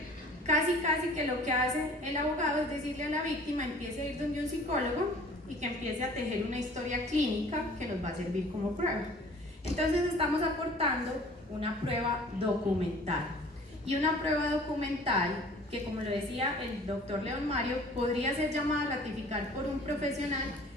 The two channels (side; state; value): both; normal; correlation 0.49